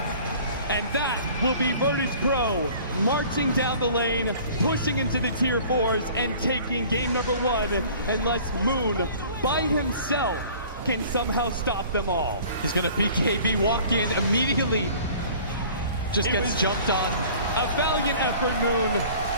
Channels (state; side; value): inverted; both; correlation -0.48